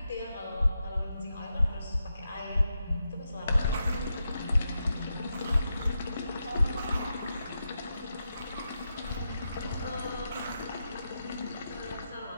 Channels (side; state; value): both; inverted; correlation -0.86